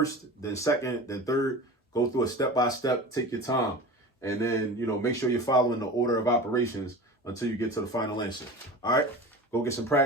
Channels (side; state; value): both; normal; correlation 0.34